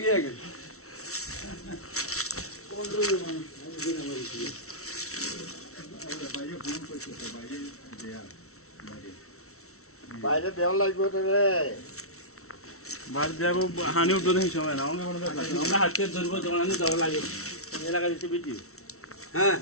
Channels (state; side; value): late; right; 0.63 ms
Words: আগে বাইরে দেওয়া লাগবে তো রে। বাইরে যাবো হানি উঠবে দেখি সময় না আমরা হাতে ধরবো জমানি দেওয়া লাগে এলাকা দিচ্ছে ভিডিও হ্যাঁ